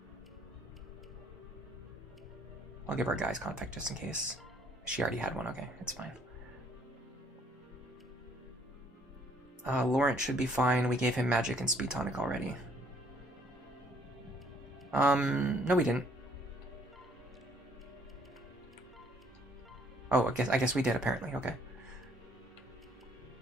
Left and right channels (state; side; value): normal; both; correlation 0.63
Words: I'll give her a guy's contact just in case. She already had one. Okay, it's fine. Laurent should be fine. We gave him magic and speed tonic already. No, we didn't. Oh, I guess we did apparently. Okay.